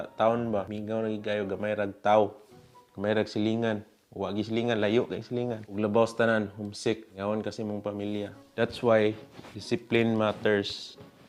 town ba. Mingaw na gayo gamay rag taw. Gamay rag silingan. Huwag silingan, layo kay silingan. Ug labaw sa tanan, homesick. Ngawan kasi mong pamilya. That's why discipline matters.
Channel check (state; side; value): identical; both; correlation 1.00